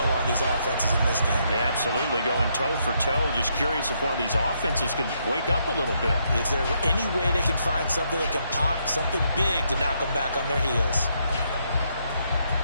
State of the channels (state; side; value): inverted; both; correlation -0.76